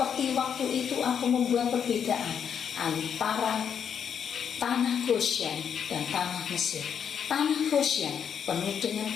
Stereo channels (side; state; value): right; quieter; 7.8 dB